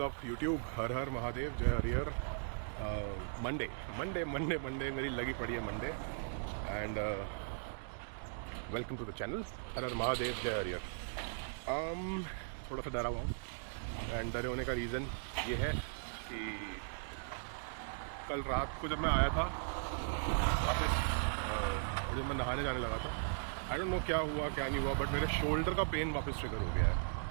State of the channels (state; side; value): silent; left; digital silence